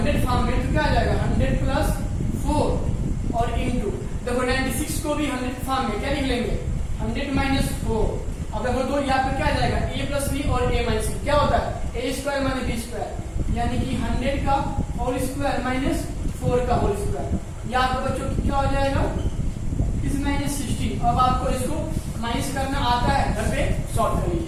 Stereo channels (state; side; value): identical; both; correlation 1.00